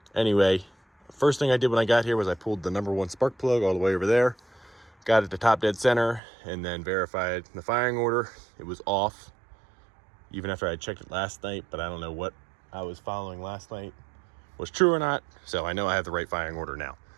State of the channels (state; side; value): drops out; left; at 6.2 s